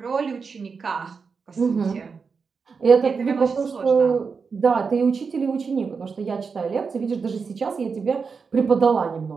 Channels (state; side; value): quieter; left; 5.3 dB